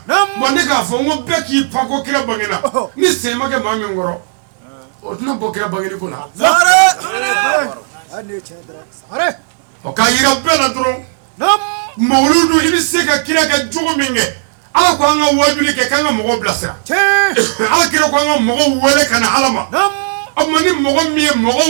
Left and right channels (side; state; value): left; silent; digital silence